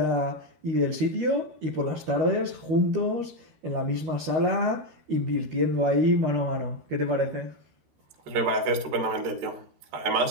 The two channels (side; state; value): left; late; 12 ms